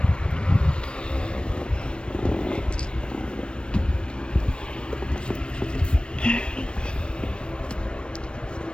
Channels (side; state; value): right; late; 0.056 ms